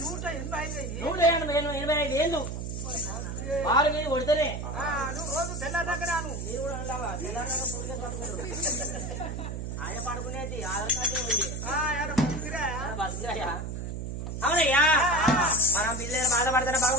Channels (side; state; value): right; noise; hum, 5 dB below the sound